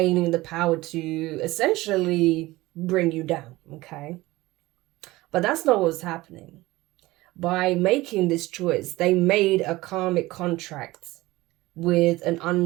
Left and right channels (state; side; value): quieter; left; 19.2 dB